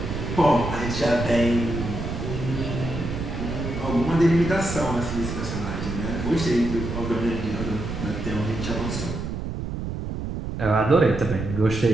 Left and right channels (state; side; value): noise; right; rumble, 5 dB below the sound